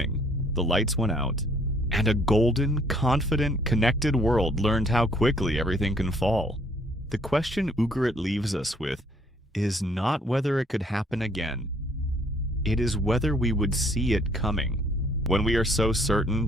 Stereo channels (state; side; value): normal; both; correlation 0.63